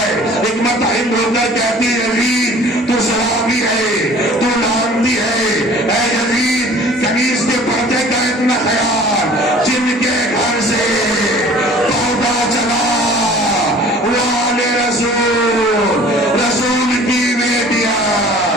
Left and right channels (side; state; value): both; normal; correlation 0.48